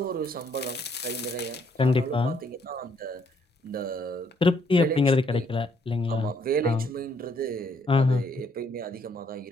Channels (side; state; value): both; normal; correlation 0.69